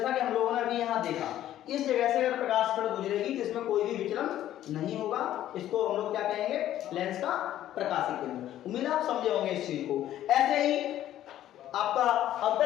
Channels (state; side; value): quieter; right; 12.5 dB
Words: कि हम लोगों ने अभी यहाँ देखा, इस जगह से अगर प्रकाश किरण गुजरेगी तो इसमें कोई भी विचलन नहीं होगा, इसको हम लोग क्या कहेंगे, लेंस का प्रकाशिक केंद्र। उम्मीद है आप समझे होंगे इस चीज को। ऐसे ही आपका